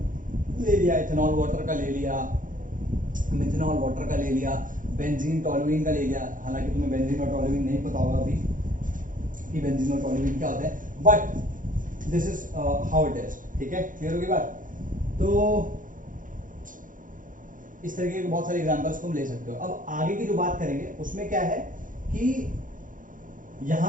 ले लिया, इथेनॉल वाटर का ले लिया, मिथेनॉल वाटर का ले लिया, बेंजीन टॉलुइन का ले लिया, हालांकि तुम्हें बेंजीन और टॉलुइन नहीं पता होगा अभी कि बेंजीन और टॉलुइन क्या होता है, but this is how it is. ठीक है, क्लियर होगी बात। तो इस तरीके के बहुत सारे एग्जांपल्स तुम ले सकते हो। अब आगे की जो बात करेंगे उसमें क्या है कि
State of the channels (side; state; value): left; late; 0.39 ms